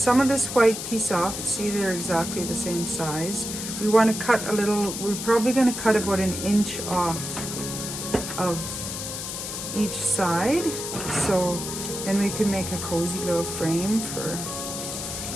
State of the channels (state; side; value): noise; left; hiss, 6 dB below the sound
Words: of this white piece off. See, they're exactly the same size. We want to cut a little, we're probably going to cut about 1 inch off of each side. So then we can make a cozy little frame for.